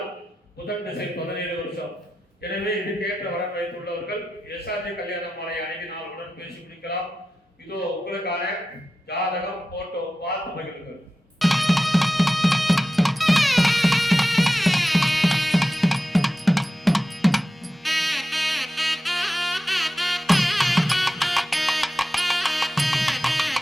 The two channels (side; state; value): both; normal; correlation 0.92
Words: புதன் திசை 17 வருஷம். எனவே இதுக்கேற்ற வரன் வைத்துள்ளவர்கள் எஸ்ஆர்ஜி கல்யாண மாலை அணுகி நாளுடன் பேசி முடிக்கலாம். இதோ உங்களுக்கான ஜாதகம் போட்டோ பார்த்து மகிழுங்கள்.